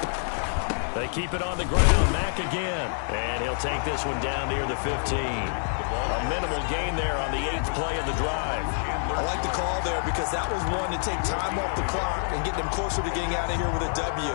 They keep it on the ground. Mack again. And he'll take this one down near the 15. A minimal gain there on the 8th play of the drive. I like the call there because that was one to take time off the clock and get them closer to getting out of here with a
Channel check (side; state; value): right; silent; digital silence